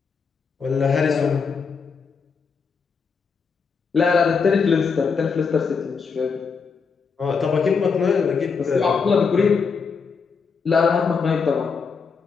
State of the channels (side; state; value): right; quieter; 5.5 dB